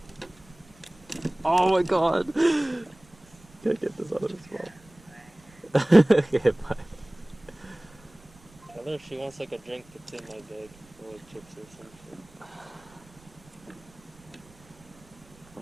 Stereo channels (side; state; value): right; noise; rumble, 26 dB below the sound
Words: Oh my god! Gotta get this out of his mouth. Okay, bye. Tell her if she wants like a drink, it's in my bag. Or like chips or something.